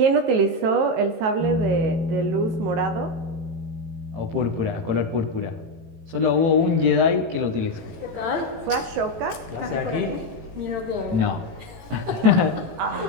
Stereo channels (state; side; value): late; left; 18 ms